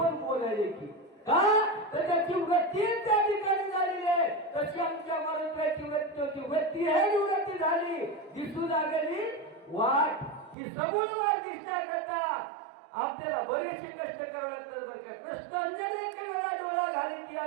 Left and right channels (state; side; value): drops out; left; at 10.6 s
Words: बोलायले की का तर त्याची वृत्ती त्या ठिकाणी झालेली आहे तशी आमच्या मराठ्याची वृत्ती आहे निवृत्ती झाली दिसू लागली वाट ही समूळ वाट दिसण्याकरता आपल्याला बरेचसे कष्ट करावे लागतात बरं का कष्ट अनेक वेळा डोळा घाली ती